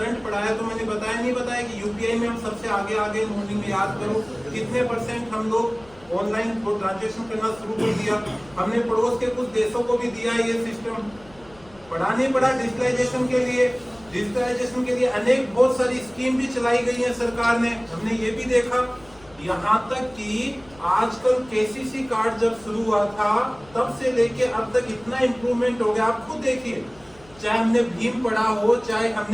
पढ़ाया तो मैंने बताया नहीं बताया कि यूपीआई में हम सबसे आगे मॉर्निंग में याद करो कितने % हम लोग ऑनलाइन ट्रांजेक्शन करना शुरू कर दिया। हमने पड़ोस के कुछ देशों को भी दिया ये सिस्टम। पढ़ा नहीं पढ़ा डिजिटलाइजेशन के लिए? डिजिटलाइजेशन के लिए अनेक बहुत सारी स्कीम भी चलाई गई है सरकार ने, हमने ये भी देखा। यहाँ तक कि आजकल KCC कार्ड जब शुरू हुआ था तब से लेके अब तक इतना इम्प्रूवमेंट हो गया। आप खुद देखिए, चाहे हमने भीम पढ़ा हो, चाहे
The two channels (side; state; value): left; noise; rumble, 25 dB below the sound